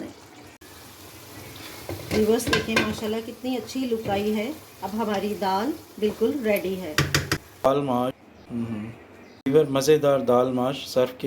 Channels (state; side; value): identical; both; correlation 1.00